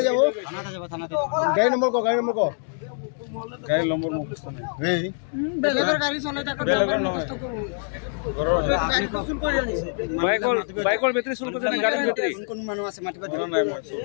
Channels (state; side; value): silent; right; 60 dB below the other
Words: যাব গাড়ী নম্বৰ ক গাড়ী নম্বৰ মুখস্থ নাই এই বেলেগৰ গাড়ী চলাই থাকো বেলেগৰ নহয় ঘৰৰ গাড়ী কুচুল কৰি আনিছে বাইকৰ বেটাৰী চুল কৰিছে নে গাড়ীৰ বেটাৰী কোন মানুহ আছে মাতিবা ঘৰৰ নাই মই